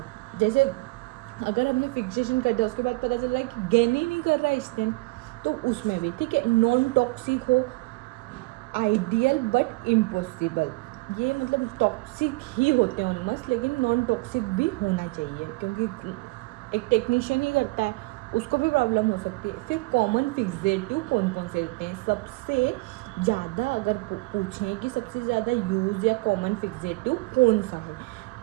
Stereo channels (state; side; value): quieter; left; 24.8 dB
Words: जैसे अगर हमने फिक्सेशन कर दिया उसके बाद पता चल रहा है कि गेन ही नहीं कर रहा है स्टेन, तो उसमें भी ठीक है। नॉन टॉक्सिक हो, आइडियल बट इम्पॉसिबल, ये मतलब टॉक्सिक ही होते हैं ऑलमोस्ट, लेकिन नॉन टॉक्सिक भी होना चाहिए क्योंकि एक टेक्नीशियन ही करता है, उसको भी प्रॉब्लम हो सकती है। फिर कॉमन फिक्सेटिव कौन कौन से होते हैं? सबसे ज़्यादा अगर पूछें कि सबसे ज़्यादा यूज या कॉमन फिक्सेटिव कौन सा है,